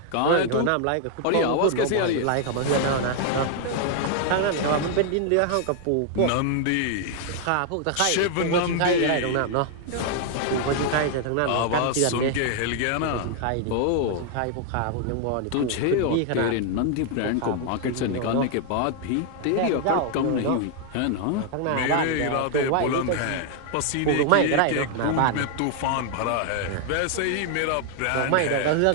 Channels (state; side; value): different; both; correlation 0.00